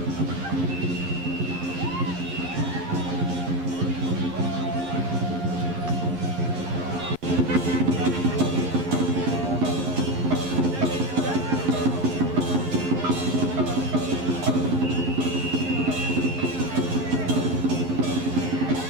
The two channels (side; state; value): left; late; 11 ms